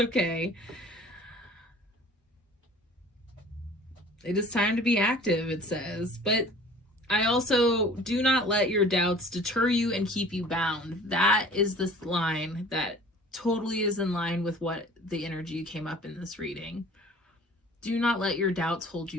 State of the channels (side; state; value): both; normal; correlation 0.47